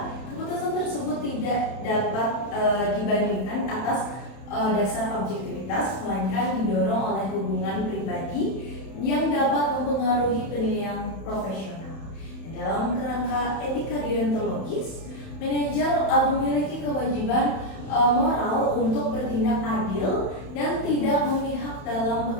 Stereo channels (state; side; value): late; right; 31 ms